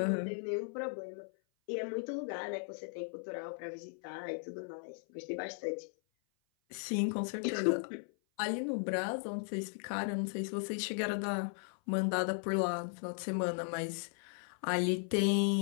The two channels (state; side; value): silent; right; 53 dB below the other